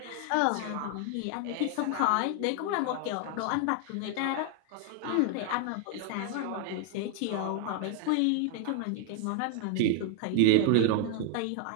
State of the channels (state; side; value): different; both; correlation 0.00